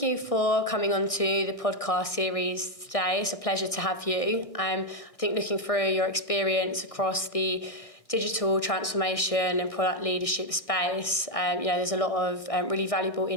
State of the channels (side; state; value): right; late; 1.6 ms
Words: you for coming on to the podcast series today. It's a pleasure to have you. I think looking through your experience across the digital transformation and product leadership space, there's a lot of really valuable